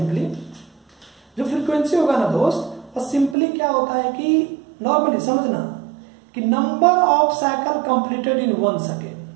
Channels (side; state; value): left; drops out; at 3.4 s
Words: जो फ्रीक्वेंसी होगा ना दोस्त, वो सिंपली क्या होता है कि नॉर्मली समझना कि number of cycle completed in 1